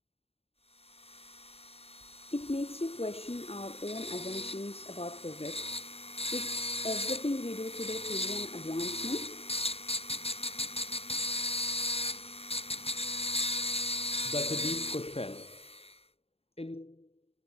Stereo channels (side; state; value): right; late; 0.29 ms